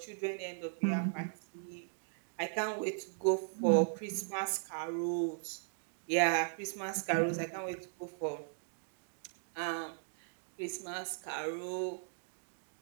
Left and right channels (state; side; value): silent; left; digital silence